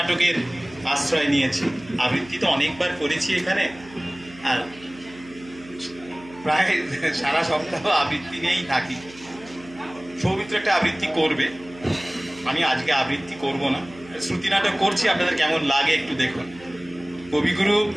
আশ্রয় নিয়েছি। আবৃত্তি তো অনেকবার করেছি এখানে, আর প্রায় সারা সপ্তাহ আবৃত্তি নিয়েই থাকি। সৌমিত্র একটা আবৃত্তি করবে, আমি আজকে আবৃত্তি করব না, শ্রুতি নাটক করছি। আপনাদের কেমন লাগে একটু দেখুন। কবিগুরু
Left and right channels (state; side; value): noise; right; hum, 20 dB below the sound